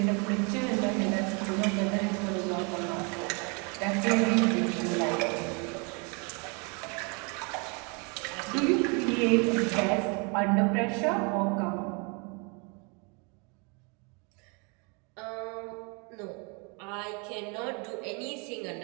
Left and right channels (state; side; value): quieter; left; 33.1 dB